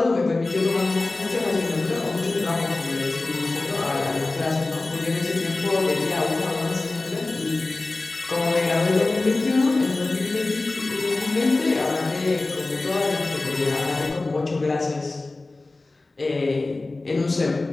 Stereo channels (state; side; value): quieter; right; 3.2 dB